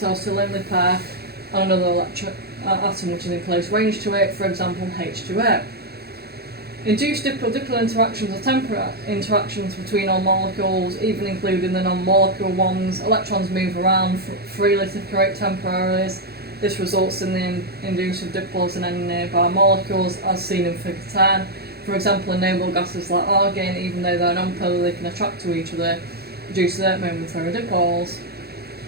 to a lonely pair on another atom which is in close range to it, for example H2O. Induced dipole-dipole interactions are temporary interactions between all molecules, even including the non-molecular ones. Electrons move around freely to create temporaries. This results in the induction of dipoles in any nearby molecules, as seen in Figure 10. For example, in noble gases like argon, even though they're non-polar, they can attract to each other due to their momentary dipoles.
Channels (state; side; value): late; left; 0.46 ms